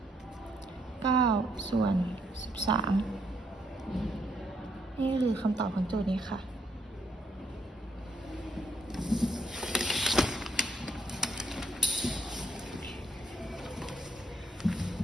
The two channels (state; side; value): normal; both; correlation 0.73